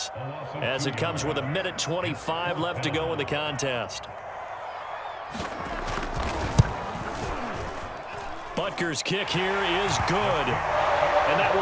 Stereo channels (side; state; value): both; identical; correlation 1.00